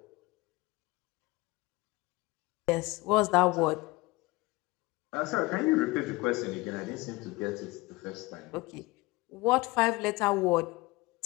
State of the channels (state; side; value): quieter; right; 22.5 dB